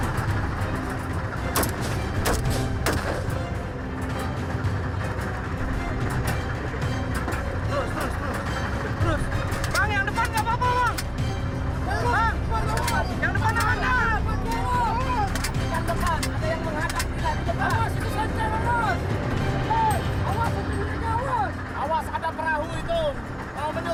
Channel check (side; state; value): both; identical; correlation 1.00